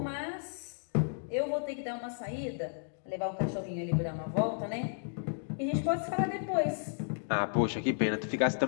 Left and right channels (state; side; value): silent; right; digital silence